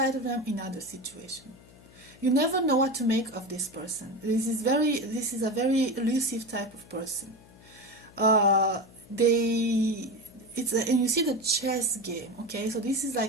of them in other situations. You never know what to make of this person. This is a very elusive type of person. And you see the chess game. Okay, so this is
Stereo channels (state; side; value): noise; left; hum, 24 dB below the sound